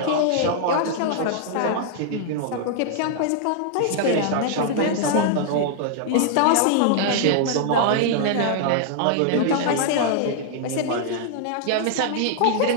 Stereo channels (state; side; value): different; both; correlation -0.01